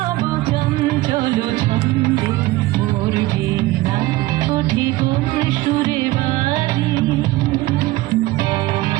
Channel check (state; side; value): quieter; left; 18.6 dB